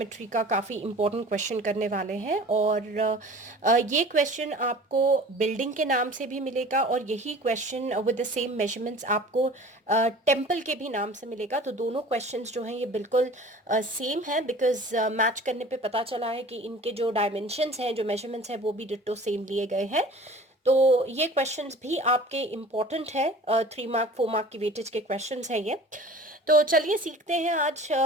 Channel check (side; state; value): both; normal; correlation 0.43